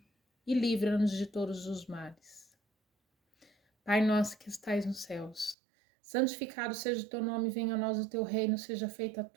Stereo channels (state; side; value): drops out; left; at 5.6 s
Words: e livra-nos de todos os males. Pai nosso que estais nos céus, santificado seja o teu nome, venha a nós o teu reino, seja feita a